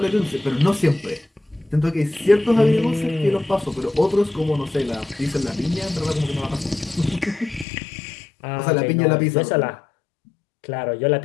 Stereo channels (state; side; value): drops out; right; at 7.7 s